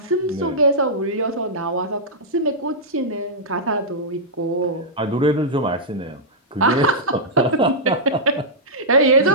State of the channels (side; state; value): both; normal; correlation -0.11